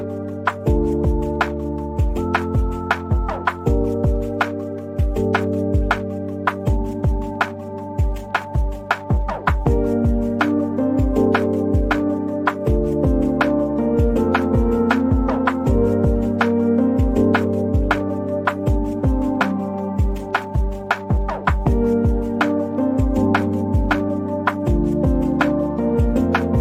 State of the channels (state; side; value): identical; both; correlation 1.00